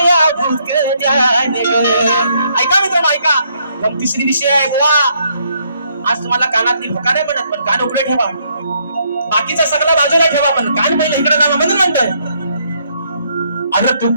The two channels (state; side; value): inverted; both; correlation -0.71